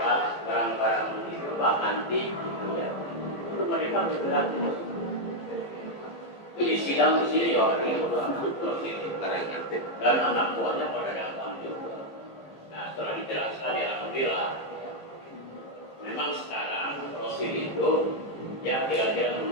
barang-barang antik gitu ya itu mereka bergerak di sidang di sini ya dan anak buahnya pada datang juga. Nah setelah dijelaskan ya alhamdulillah. Memang sekarang Rosid itu ya kira-kira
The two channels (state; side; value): late; right; 15 ms